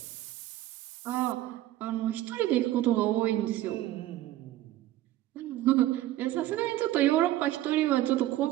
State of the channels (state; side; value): quieter; left; 14.8 dB